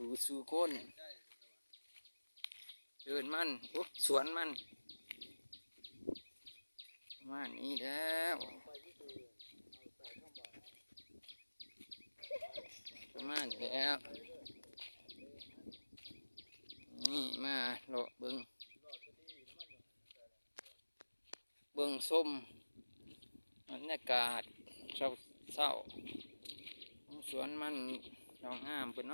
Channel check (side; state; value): both; inverted; correlation -1.00